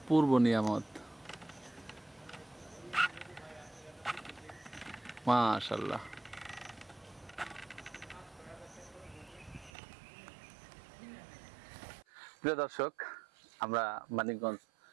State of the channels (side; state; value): left; drops out; at 9.7 s